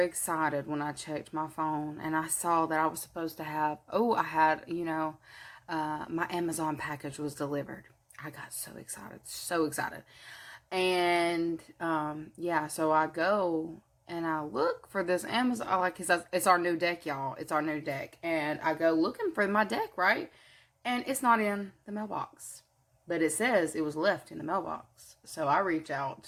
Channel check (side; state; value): both; identical; correlation 1.00